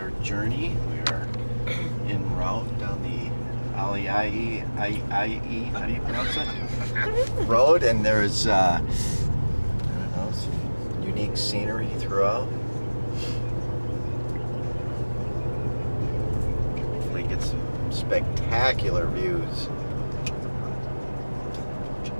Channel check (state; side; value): inverted; both; correlation -1.00